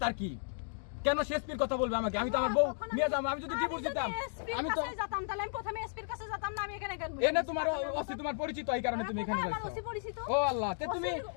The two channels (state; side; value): silent; right; digital silence